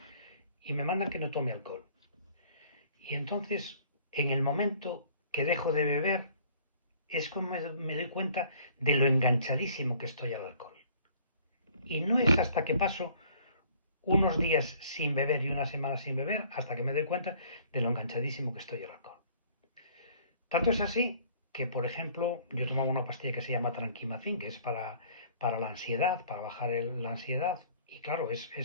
y me mandan que no tome alcohol. Y entonces, en el momento que dejo de beber, es como me doy cuenta de lo enganchadísimo que estoy al alcohol. Y no es hasta que paso unos días sin beber y una semana sin beber hasta que me doy cuenta de lo enganchadísimo que estoy al alcohol. Tanto es así que, por ejemplo, yo tomaba una pastilla que se llama Tranquimacin, que es para la ansiedad, para bajar la ansiedad. Y claro,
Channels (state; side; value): inverted; both; correlation -0.55